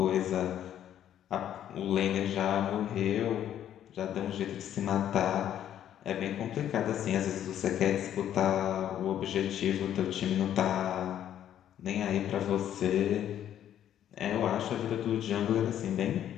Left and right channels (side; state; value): right; quieter; 10.7 dB